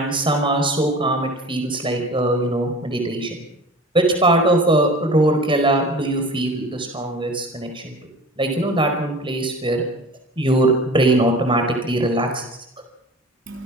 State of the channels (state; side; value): normal; both; correlation 0.39